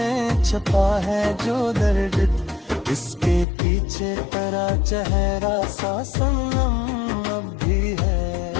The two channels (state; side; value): drops out; right; at 3.5 s